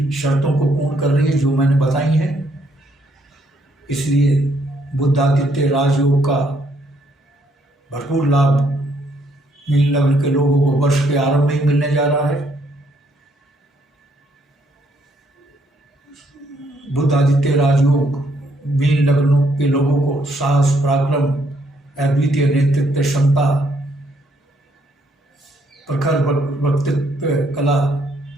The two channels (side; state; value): both; normal; correlation 0.71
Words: शर्तों को पूर्ण कर रही है जो मैंने बताई हैं। इसलिए बुधादित्य राजयोग का भरपूर लाभ मीन लग्न के लोगों को वर्ष के आरंभ में ही मिलने जा रहा है। बुधादित्य राजयोग मीन लग्नों के लोगों को साहस, पराक्रम, अद्वितीय नेतृत्व क्षमता, प्रखर वक्तृत्व कला